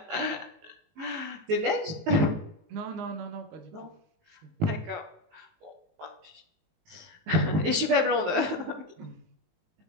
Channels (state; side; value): late; left; 19 ms